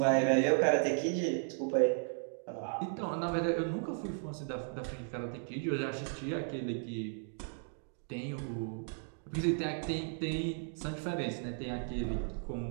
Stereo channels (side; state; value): left; silent; 54 dB below the other